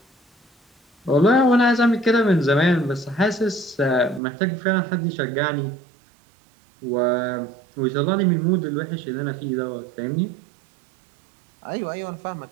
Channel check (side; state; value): left; drops out; at 4.2 s